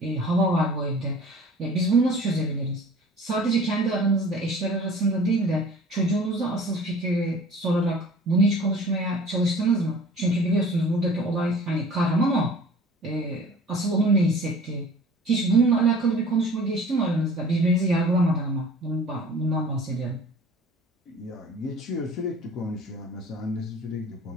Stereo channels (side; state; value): both; normal; correlation 0.46